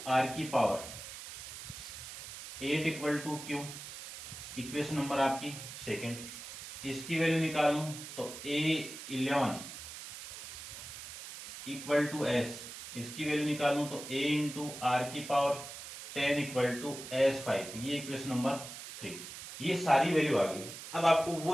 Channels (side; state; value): right; noise; hiss, 11 dB below the sound